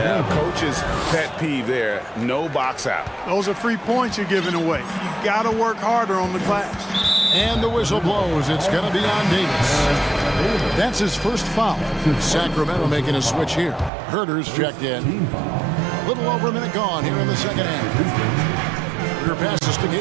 coach's pet peeve there. No box out. Those are free points you're giving away. You got to work harder on the glass. And the whistle blows. It's going to be on Davis. That's his first foul. Sacramento making a switch here. Herter's checked in. A little over a minute gone here in the second half. Herter passes to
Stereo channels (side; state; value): left; drops out; at 13.9 s